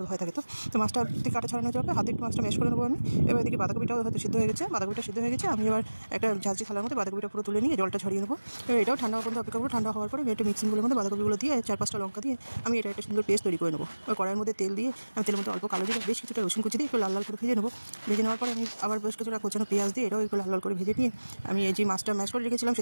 ভয় থাকে। তো মাছটা থেকে কাঁটা ছাড়ানো যাবে, হাতে একটু মাছটা ম্যাশ করে নেবো আমি। এবার এদিকে বাঁধাকপিটাও হয়তো সিদ্ধ হয়ে গেছে। বাঁধাকপিটা সিদ্ধ হয়ে গেছে, আমি এবার একটা ঝাঁঝরি থালার মধ্যে বাঁধাকপিটা পুরো তুলে নিয়ে জলটা ছড়িয়ে নেবো। এবার এটাও ঠান্ডা হওয়ার পর্যন্ত অপেক্ষা করবো। ঠান্ডা হওয়ার পরে একটা মিক্সিং গুলোর মধ্যে বাঁধাকপিগুলো দিয়ে 4-5টা লঙ্কা দিয়ে আমি এটা একটা সুন্দর পেস্ট তৈরি করে নেবো। ওই কড়াইয়ের মধ্যে তেল দিয়ে আমি তেলের মধ্যে অল্প কালো দিয়ে বেশ কিছুটা রসুন কুচি দিয়ে একটু লাল লাল করে ভেজে নেবো। ভেজে নেওয়ার পরে আমি আবার বেশ কিছুটা কোচানো পেঁয়াজ দিয়ে এটাও একটু লাল লাল করে ভেজে নিয়ে আমি এই যে মাছটা ম্যাশ করে রেখেছিলাম,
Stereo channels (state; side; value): inverted; both; correlation -1.00